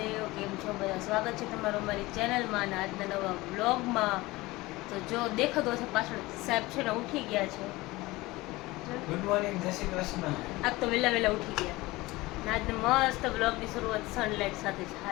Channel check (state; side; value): quieter; right; 20.4 dB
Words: કેમ છો બધા? સ્વાગત છે તમારું અમારી ચેનલમાં અને આજના નવા બ્લોગમાં. તો જો દેખાતો હશે પાછળ સાહેબ છે ને ઉઠી ગયા છે. ગુડ મોર્નિંગ, જય શ્રી કૃષ્ણ. આજ તો વહેલા વહેલા ઉઠી ગયા. અને આજને મસ્ત બ્લોગની શરૂઆત સનલાઇટ સાથે છે.